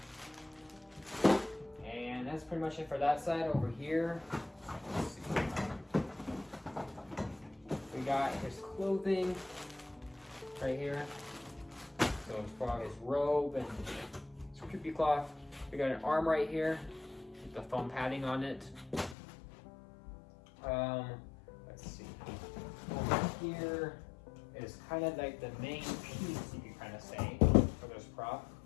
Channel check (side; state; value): right; drops out; at 19.2 s